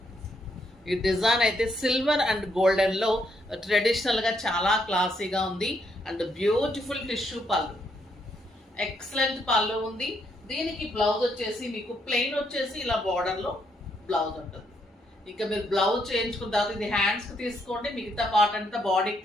ఈ డిజైన్ అయితే సిల్వర్ అండ్ గోల్డెన్ లో ట్రెడిషనల్ గా చాలా క్లాసీగా ఉంది. అండ్ బ్యూటిఫుల్ టిష్యూ పళ్ళు, ఎక్సలెంట్ పళ్ళు ఉంది. దీనికి బ్లౌజ్ వచ్చేసి మీకు ప్లెయిన్ వచ్చేసి ఇలా బార్డర్ లో బ్లౌజ్ ఉంటుంది. ఇంకా మీరు బ్లౌజ్ చేయించుకున్న తర్వాత ఇది హ్యాండ్స్ కి తీసుకోండి, మిగతా పార్ట్ అంతా బాడీకి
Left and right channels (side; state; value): both; normal; correlation 0.75